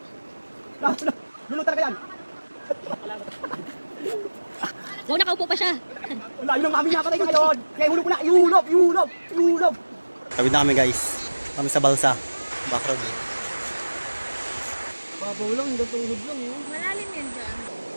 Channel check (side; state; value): both; inverted; correlation -1.00